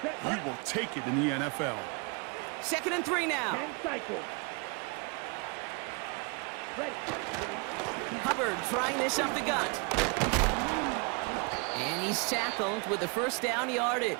you will take it in the NFL. 2nd and 3 now. Hubbard trying this up the gut. And he's tackled with the 1st down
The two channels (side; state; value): left; quieter; 33.6 dB